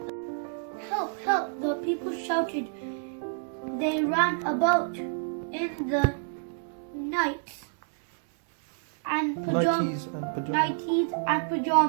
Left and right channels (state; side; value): silent; left; digital silence